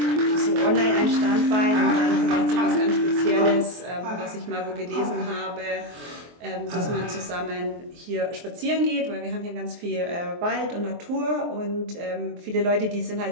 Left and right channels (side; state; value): left; late; 23 ms